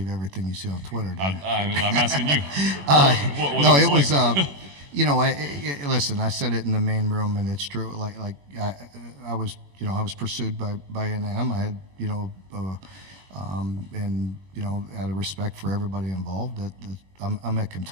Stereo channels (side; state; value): left; late; 21 ms